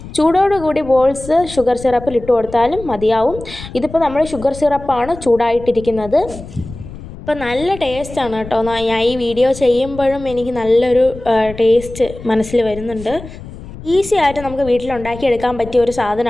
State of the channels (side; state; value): left; noise; rumble, 14 dB below the sound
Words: ചൂടോടുകൂടി ബോൾസ് ഷുഗർ സിറപ്പിൽ ഇട്ട് കൊടുത്താലും മതിയാവും. ഇതിപ്പോൾ നമ്മൾ ഷുഗർ സിറപ്പാണ് ചൂടായിട്ടിരിക്കുന്നത്. അപ്പോൾ നല്ല ടേസ്റ്റാണ് കേട്ടോ. ഞാൻ ഈ വീഡിയോ ചെയ്യുമ്പോഴും എനിക്ക് നല്ലൊരു ടേസ്റ്റ് മനസ്സിൽ വരുന്നുണ്ട്. ഈസി ആയിട്ട് നമുക്ക് വീട്ടിലുണ്ടാക്കിയെടുക്കാൻ പറ്റിയ ഒരു